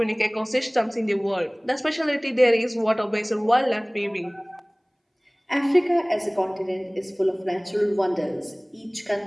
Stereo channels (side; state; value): both; identical; correlation 1.00